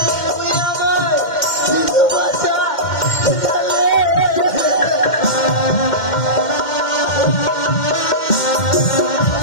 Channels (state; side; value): late; right; 2.1 ms